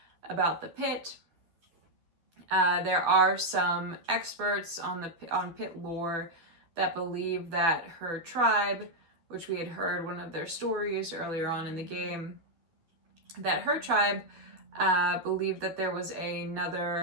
about the pit. There are some experts on pit lore that believe that her tribe, which we had heard one of their stories earlier on in the game, that her tribe believed that there was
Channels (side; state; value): left; late; 12 ms